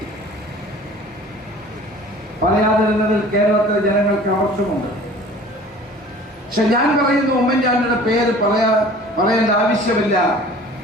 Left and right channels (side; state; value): both; normal; correlation 0.46